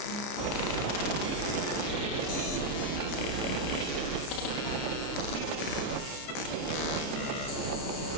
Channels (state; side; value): late; right; 29 ms